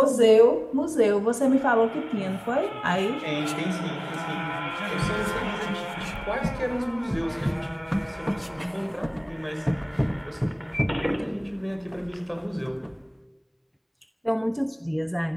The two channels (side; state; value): both; identical; correlation 1.00